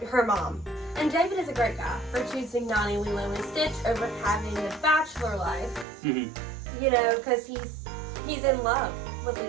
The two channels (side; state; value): left; drops out; at 5.9 s